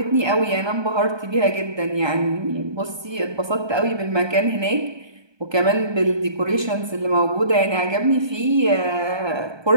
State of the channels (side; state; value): left; late; 1.2 ms